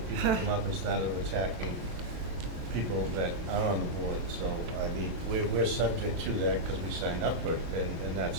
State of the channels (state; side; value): late; left; 23 ms